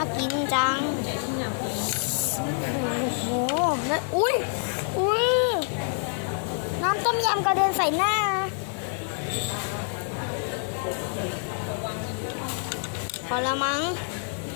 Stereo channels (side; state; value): right; silent; 60 dB below the other